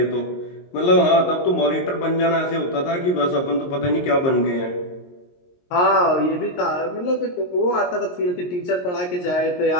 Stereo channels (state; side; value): late; right; 22 ms